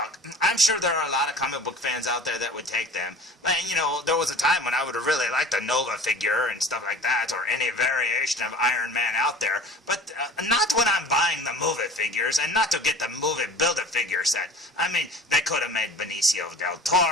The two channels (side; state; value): both; normal; correlation 0.42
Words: I'm sure there are a lot of comic book fans out there that would take them. But, there was a time when I would have really liked a Nova figure and stuff like that, or any variation of Iron Man out there. But not when I'm buying the movie figures, and not to get the movie Build-A-Figure set. They could have made Benicio del